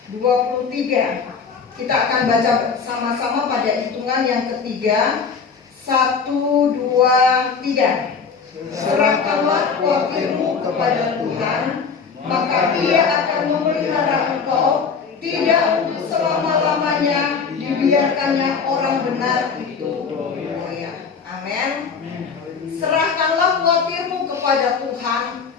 Kita akan baca sama-sama pada hitungan yang ketiga. 1, 2, 3. Serahkanlah khawatirmu kepada Tuhan, maka Ia akan memelihara engkau. Tidak untuk selama-lamanya dibiarkannya orang benar itu goyah. Amin. Serahkanlah khawatirmu kepada Tuhan,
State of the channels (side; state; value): right; quieter; 5.7 dB